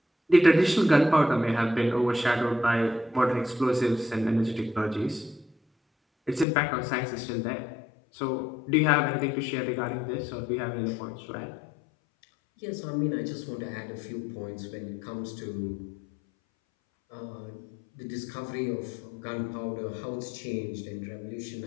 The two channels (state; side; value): drops out; right; at 6.5 s